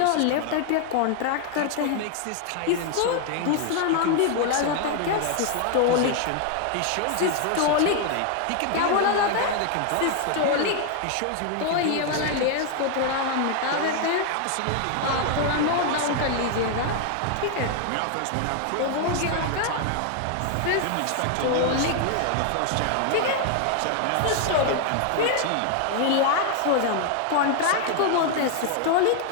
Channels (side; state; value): both; different; correlation 0.00